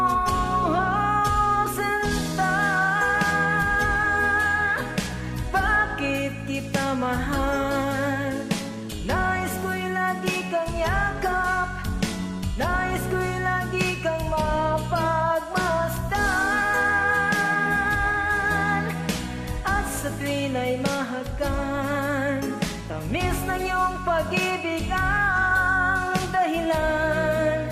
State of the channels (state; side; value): identical; both; correlation 1.00